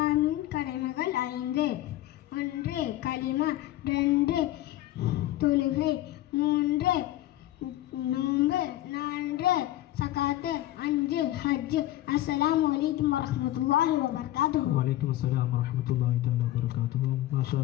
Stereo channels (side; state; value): right; quieter; 14.9 dB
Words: கடமைகள் 5. 1 கலிமா, 2 தொழுகை, 3 நோன்பு, 4 சகாத்து, 5 ஹஜ். அஸ்ஸலாமு அலைக்கும் வரஹ்மத்துல்லாஹி வபரகாத்துஹு. வலைக்கும் அஸ்ஸலாம் வரஹ்மத்துல்லாஹி தஆலா வபரகாத்துஹு. மாஷா